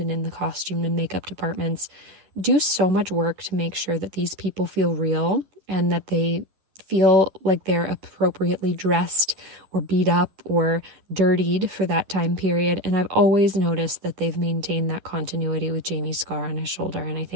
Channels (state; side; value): late; left; 10 ms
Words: in the costume and makeup departments do so much work to make sure that these people feel real and that they feel like they're appropriately dressed or beat up or dirtied for that time period. And I've always noticed that they've maintained that continuity with Jamie's scar on his shoulder, and I